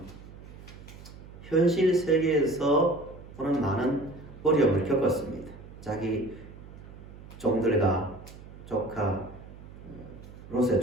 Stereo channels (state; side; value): noise; right; hum, 17 dB below the sound